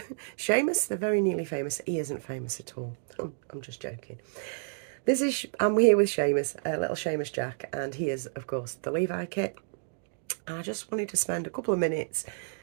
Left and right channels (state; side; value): silent; left; digital silence